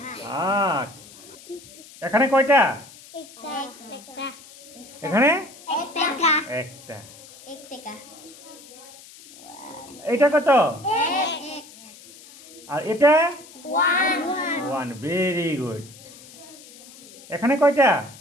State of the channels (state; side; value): noise; left; hiss, 20 dB below the sound